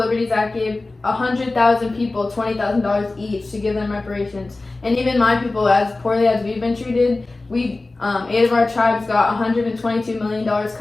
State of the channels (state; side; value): quieter; right; 3.2 dB